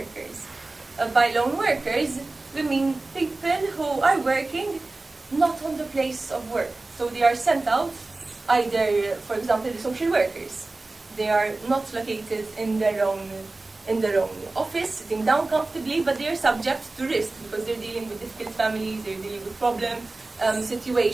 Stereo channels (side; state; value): left; quieter; 3.2 dB